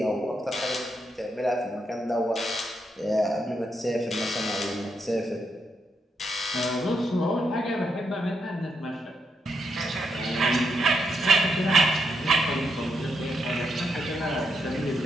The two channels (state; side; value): normal; both; correlation 0.81